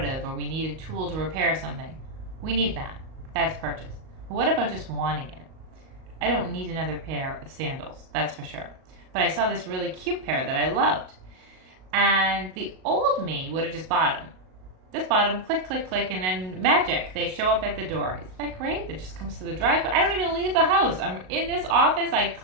of, or we need a tool to repair something, we need that. That's purchase. But what about just wanting it? I don't need another pair of sandals, that's for sure. But I saw this really cute pair that I loved. And the old me would have just bought them. Just bought them, click, click, click, and then magic, they show up at the door. Isn't that great? It just comes to the driveway. I don't even leave the house. I'm in this office, I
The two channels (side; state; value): left; late; 38 ms